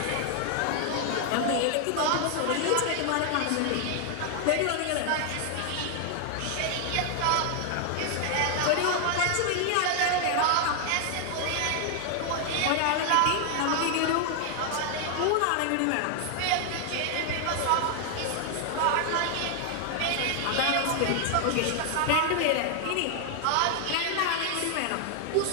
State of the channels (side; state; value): both; different; correlation 0.00